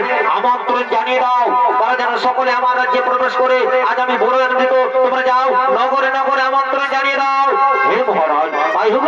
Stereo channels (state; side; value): identical; both; correlation 1.00